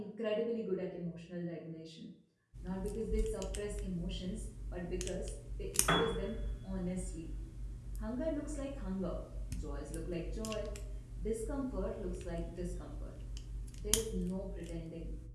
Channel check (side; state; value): both; identical; correlation 1.00